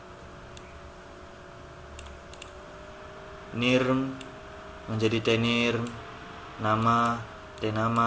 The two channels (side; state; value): both; identical; correlation 1.00